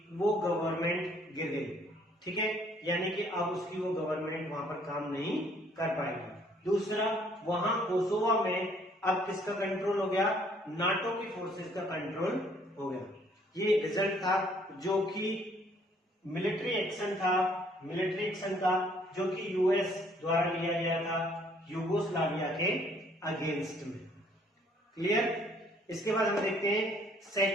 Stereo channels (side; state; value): both; normal; correlation 0.62